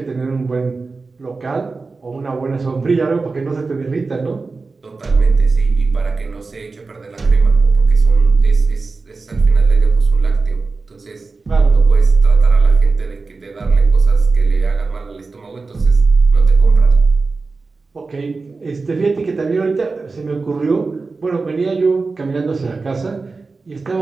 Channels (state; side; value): quieter; left; 4.0 dB